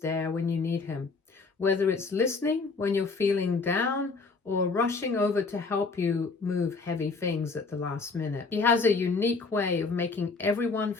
when you need him, whether it's listening when you're feeling down or rushing over to help you move heavy things at the last minute. He has a unique way of making everyone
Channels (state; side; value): quieter; right; 4.3 dB